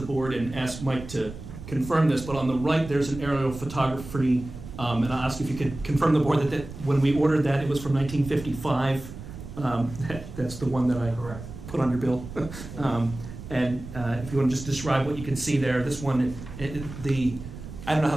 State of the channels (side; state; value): right; noise; rumble, 12 dB below the sound